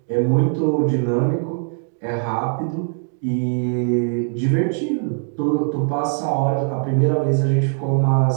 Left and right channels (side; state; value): left; silent; digital silence